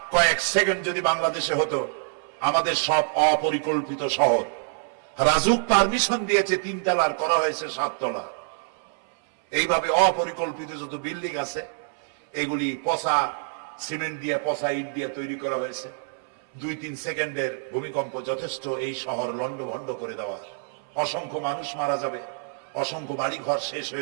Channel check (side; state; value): left; silent; 60 dB below the other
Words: কয়েক সেকেন্ড যদি বাংলাদেশে হতো, আমাদের সব অপরিকল্পিত শহর, রাজুক পারমিশন দিয়েছে 3 তলার, করা হয়েছে 7 তলা। এইভাবে অপরিকল্পিত যত বিল্ডিং আছে এগুলি পচা সিমেন্ট দিয়ে, পচা ইট দিয়ে তৈরি করা হয়েছে। 2-3 সেকেন্ডের ভূমিকম্প যথেষ্ট এই শহর লন্ডভন্ড করে দেওয়ার। অসংখ্য মানুষ মারা যাবে, অসংখ্য বাড়ি ঘর শেষ